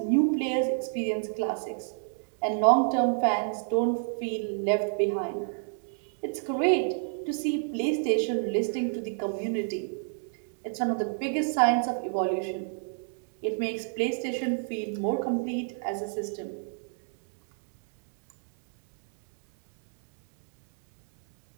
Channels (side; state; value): left; silent; digital silence